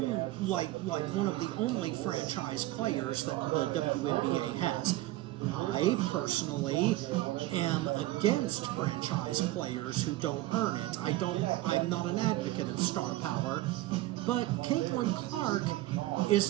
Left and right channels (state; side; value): quieter; left; 16.9 dB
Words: one of the only franchise players that the WNBA has. I personally am against franchise players who don't earn it. I'm not an advocate of star power, but Caitlyn Clark